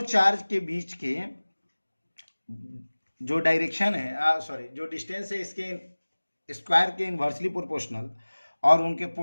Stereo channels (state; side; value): inverted; both; correlation -1.00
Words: charge के बीच के जो direction है, जो distance है, इसके square के इन्वर्सली प्रोपोर्शनल और उनके